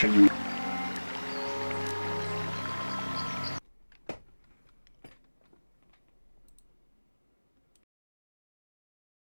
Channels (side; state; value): both; inverted; correlation -1.00